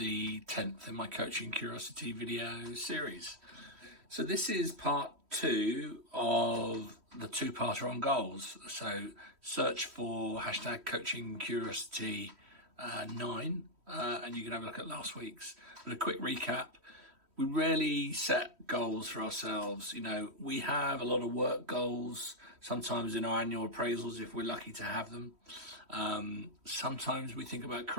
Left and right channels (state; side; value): late; left; 3.1 ms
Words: 10th in my Coaching Curiosity video series. So this is part 2 of the two-parter on goals. So search for hashtag Coaching Curiosity 9 and you can have a look at last week's. But a quick recap, we rarely set goals for ourselves. You know, we have a lot of work goals, sometimes in our annual appraisals if we're lucky to have them. Sometimes we think about